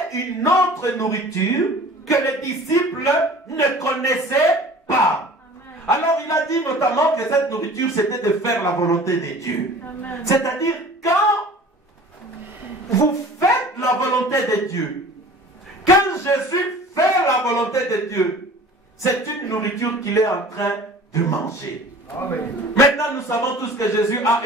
une autre nourriture que les disciples ne connaissaient pas. Alors il a dit notamment que cette nourriture, c'était de faire la volonté de Dieu. C'est-à-dire, quand vous faites la volonté de Dieu, quand Jésus fait la volonté de Dieu, c'est une nourriture qu'il est en train de manger. Amen. Maintenant, nous savons tous que Jésus a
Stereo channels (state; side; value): normal; both; correlation 0.44